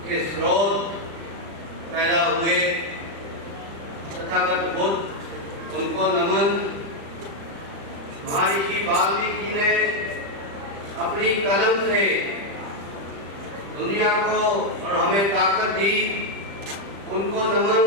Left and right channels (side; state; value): left; late; 35 ms